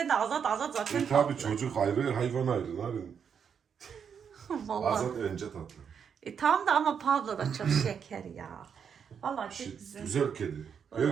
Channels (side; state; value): left; quieter; 7.2 dB